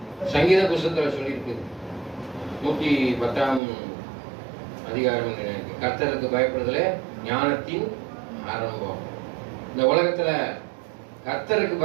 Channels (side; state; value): left; drops out; at 3.6 s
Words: சங்கீத புஸ்தகத்துல சொல்லியிருக்கு. 110ஆம் அதிகாரம், கர்த்தருக்கு பயப்படுதலே ஞானத்தின் ஆரம்பம். இந்த உலகத்துல கர்த்தருக்கு